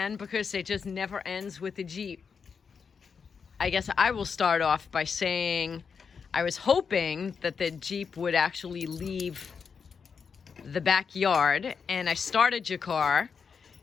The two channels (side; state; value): right; quieter; 6.0 dB